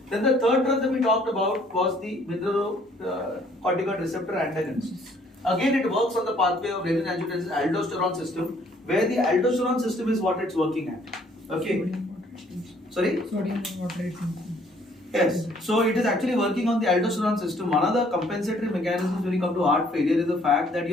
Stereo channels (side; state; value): both; normal; correlation 0.62